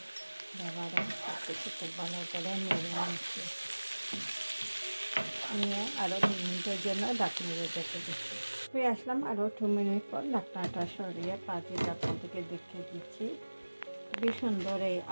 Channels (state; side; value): inverted; both; correlation -1.00